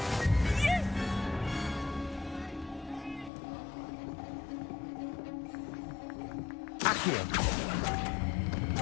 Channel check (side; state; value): right; drops out; at 3.3 s